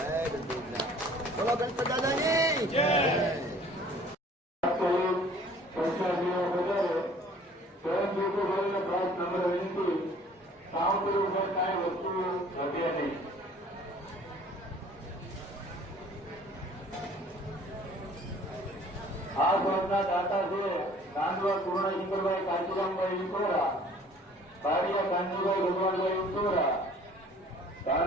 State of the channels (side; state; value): both; normal; correlation 0.52